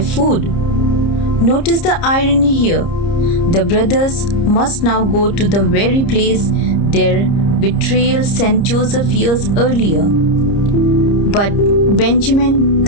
Notice the irony here. The brothers must now go to the very place their betrayal sent Joseph years earlier. But Benjamin,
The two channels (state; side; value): late; right; 30 ms